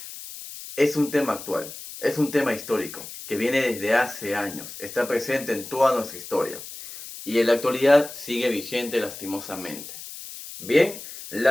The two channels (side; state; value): left; noise; hiss, 12 dB below the sound